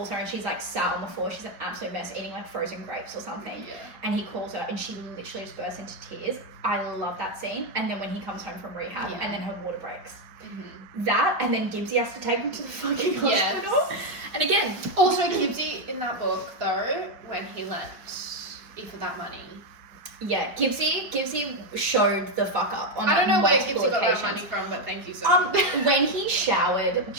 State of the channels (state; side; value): late; left; 5.0 ms